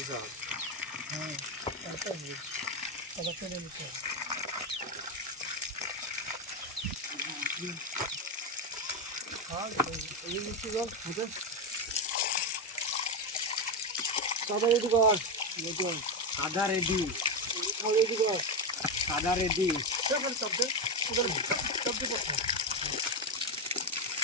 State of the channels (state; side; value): normal; both; correlation 0.11